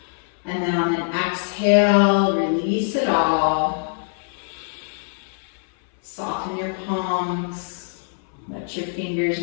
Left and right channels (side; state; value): right; silent; 60 dB below the other